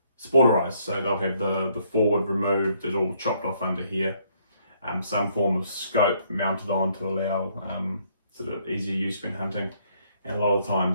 sporterized, so they'll have the forward removed, it's all chopped off under here, some form of scope mounted on to allow sort of easier use when hunting, and a lot of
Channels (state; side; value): inverted; both; correlation -0.68